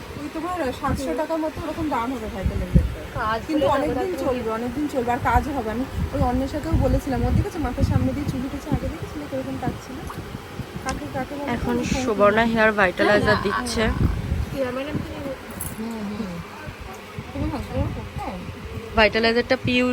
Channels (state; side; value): identical; both; correlation 1.00